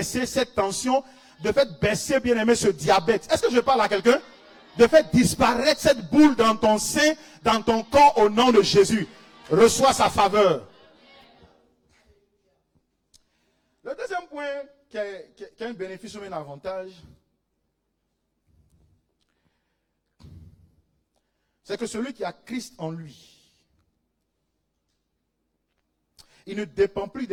cette tension, de faire baisser, bien aimé, ce diabète. Est-ce que je parle à quelqu'un? De faire disparaître cette boule dans ton sein, dans ton corps, au nom de Jésus. Reçois sa faveur. Le deuxième point qui a un bénéfice ou un avantage, c'est que celui qui a Christ en lui, il ne dépend plus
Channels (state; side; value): identical; both; correlation 1.00